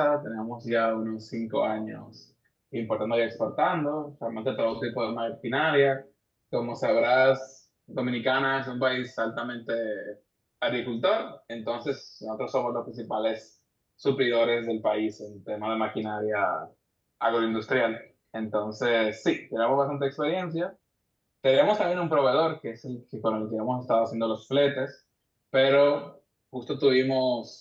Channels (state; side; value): identical; both; correlation 1.00